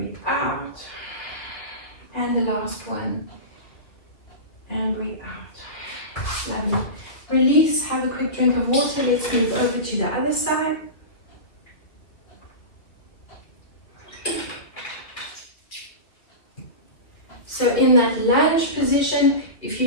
out. And the last one, and breathe out. Lovely. Release, have a quick drink of water. Let's move over to the other side. So in that lunge position, if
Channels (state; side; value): late; right; 2.6 ms